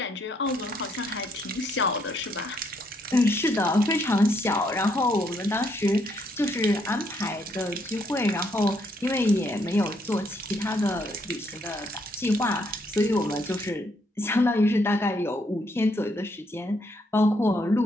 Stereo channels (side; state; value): both; normal; correlation 0.72